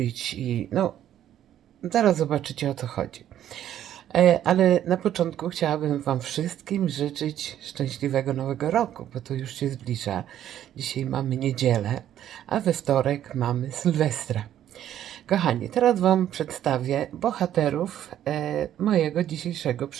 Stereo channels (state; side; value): quieter; left; 11.2 dB